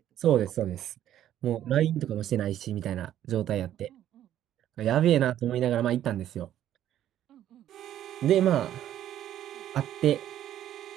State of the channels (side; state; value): left; quieter; 11.6 dB